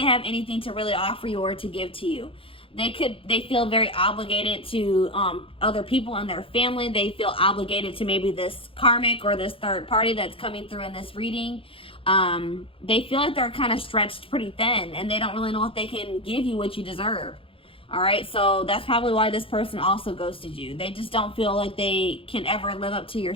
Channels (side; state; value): right; late; 0.26 ms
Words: have anything to really offer you or to give to you. They feel very obligated to other people in their family. They feel obligated to maybe this karmic or this third party that's coming through in this reading. They feel like they're kind of stretched pretty thin, and they don't really know if they can give you what you deserve. All right, so that's probably why this person also ghosted you. They just don't feel like they can ever live up to your